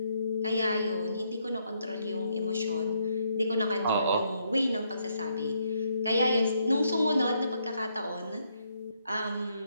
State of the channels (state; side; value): inverted; both; correlation -0.74